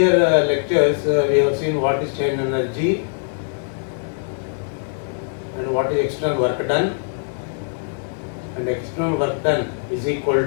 lectures, we have seen what is strain energy and what is external work done, and external work done is equal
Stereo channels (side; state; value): right; silent; digital silence